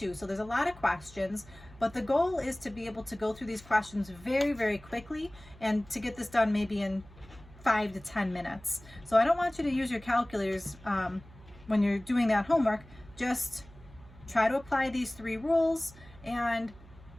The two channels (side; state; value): right; noise; hum, 21 dB below the sound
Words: So there's a lot of questions, But the goal is to be able to go through these questions very, very quickly and to get this done maybe in 5 to 10 minutes. So I don't want you to use your calculators when you're doing that homework. Just try to apply these 3 rules and